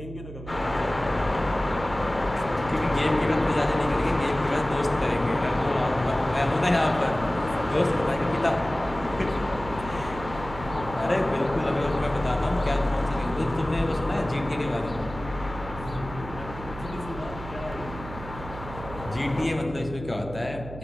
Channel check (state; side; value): noise; right; hum, 13 dB below the sound